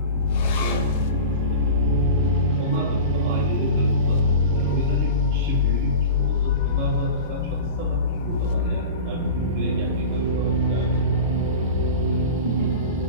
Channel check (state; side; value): inverted; both; correlation -0.32